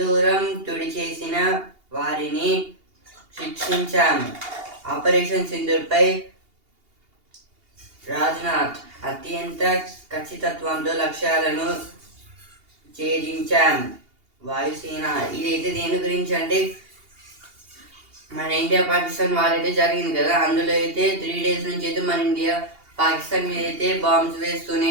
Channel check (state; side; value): late; left; 2.8 ms